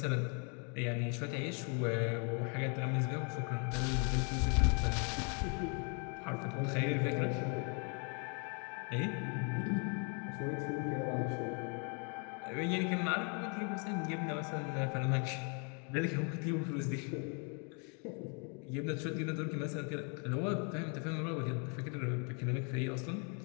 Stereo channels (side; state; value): right; quieter; 37.5 dB